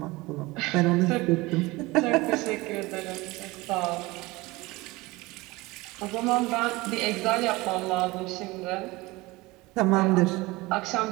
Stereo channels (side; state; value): left; quieter; 21.7 dB